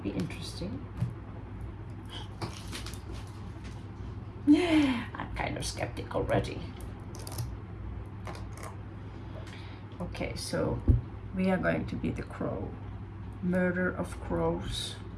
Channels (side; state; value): both; identical; correlation 1.00